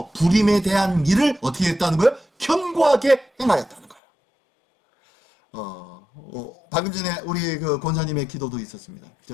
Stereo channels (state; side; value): drops out; right; at 4.0 s